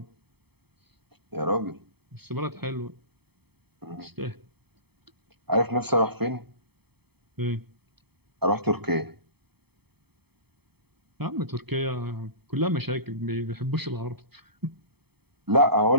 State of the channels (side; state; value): left; late; 0.97 ms